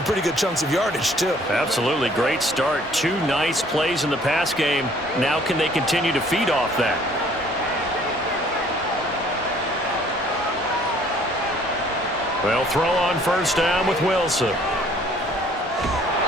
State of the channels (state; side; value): normal; both; correlation 0.58